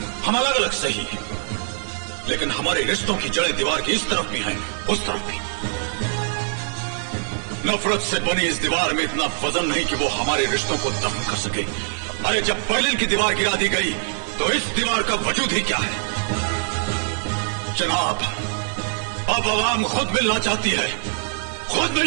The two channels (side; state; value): left; silent; digital silence